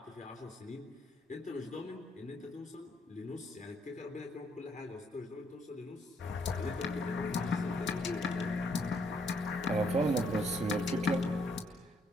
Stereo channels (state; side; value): normal; both; correlation 0.71